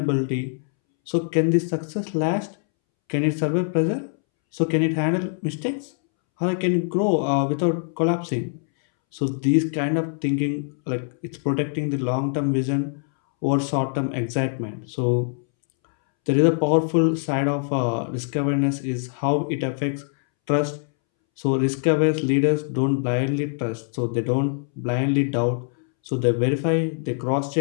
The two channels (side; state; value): right; silent; 63 dB below the other